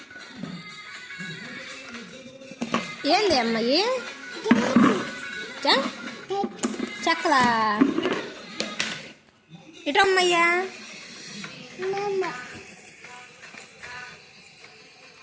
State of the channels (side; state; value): both; identical; correlation 1.00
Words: ఏంది అమ్మాయి చెక్కలా ఇటమ్మయ్యా.